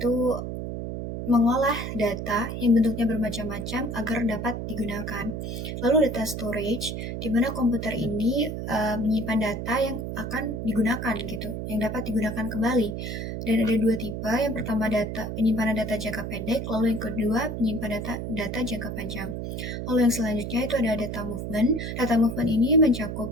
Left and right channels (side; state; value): right; noise; hum, 5 dB below the sound